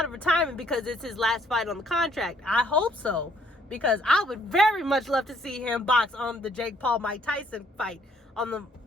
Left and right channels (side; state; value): both; normal; correlation 0.65